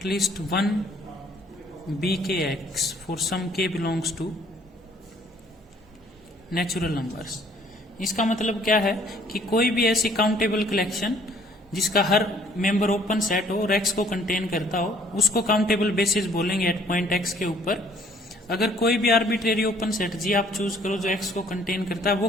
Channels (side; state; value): both; normal; correlation 0.60